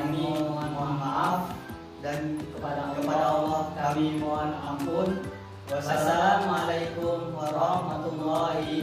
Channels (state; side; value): identical; both; correlation 1.00